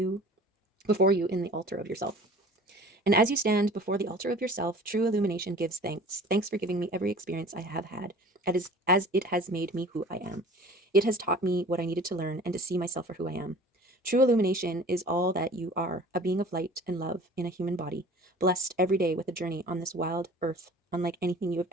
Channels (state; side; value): normal; both; correlation 0.45